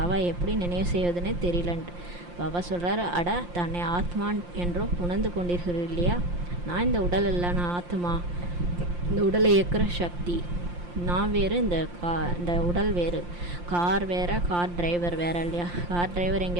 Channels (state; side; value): late; left; 5.7 ms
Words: எப்படி நினைவு செய்வதுன்னே தெரியலன்ட்டு. பாபா சொல்கிறாரு, அட தன்னை ஆத்மான் என்றோ புணர்ந்து கொண்டிருக்கிறது இல்லையா. நான் இந்த உடல் இல்லை, நான் ஆத்மா. இந்த உடலை இயக்குற சக்தி நான் வேறு, இந்த உடல் வேறு. கார் வேறு, கார் டிரைவர் வேறு இல்லையா. கார் டிரைவர்